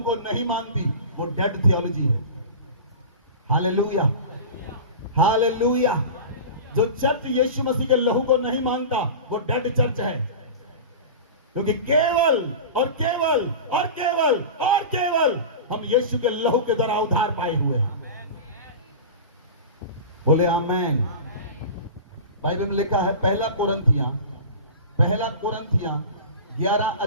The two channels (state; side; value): inverted; both; correlation -0.31